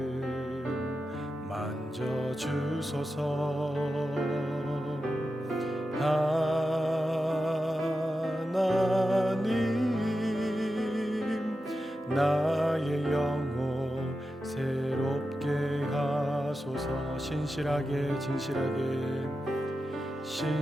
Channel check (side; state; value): both; normal; correlation 0.91